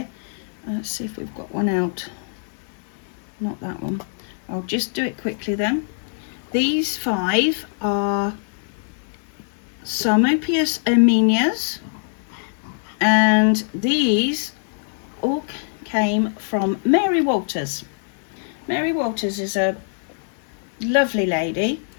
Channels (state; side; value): silent; right; 63 dB below the other